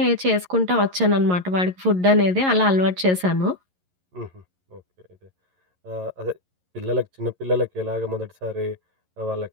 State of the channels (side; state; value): left; late; 11 ms